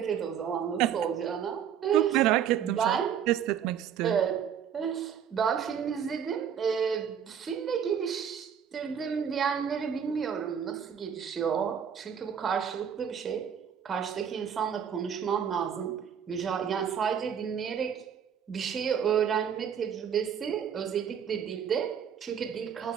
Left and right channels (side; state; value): left; quieter; 8.2 dB